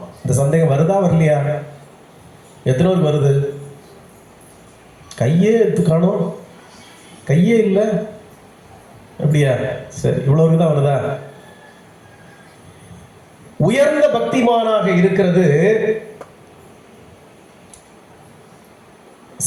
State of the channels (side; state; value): both; identical; correlation 1.00